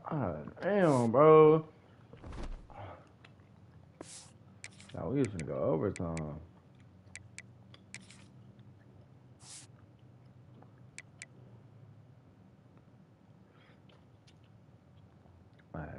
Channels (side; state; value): both; identical; correlation 1.00